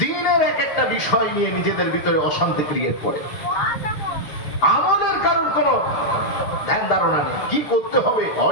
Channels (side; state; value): right; late; 6.7 ms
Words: এক একটা বিষয় নিয়ে নিজেদের ভিতরে অশান্তি ক্রিয়েট করে। আমলের কারোর কোনো ধ্যান ধারণা নেই, কি করতে হবে,